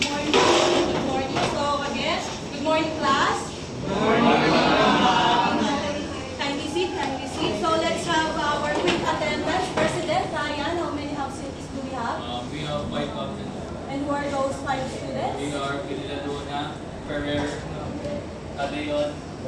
morning. Good morning. So again, good morning class. Good morning. Kindly sit, kindly sit. So let's have our quick attendance. President Ryan, how many absentees do we have? We have 5 absent. And who are those 5 students? We are Piladona, Ferrer, Adeon,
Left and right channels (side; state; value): both; identical; correlation 1.00